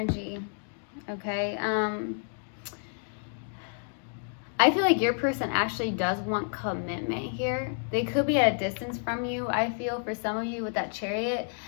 Okay. I feel like your person actually does want commitment here. They could be at a distance from you. I feel for some of you with that Chariot,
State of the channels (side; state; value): right; silent; 55 dB below the other